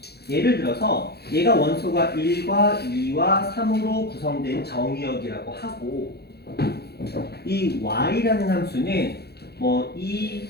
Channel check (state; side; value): late; right; 0.47 ms